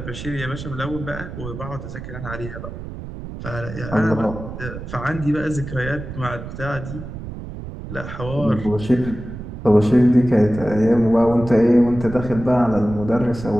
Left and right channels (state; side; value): noise; right; rumble, 10 dB below the sound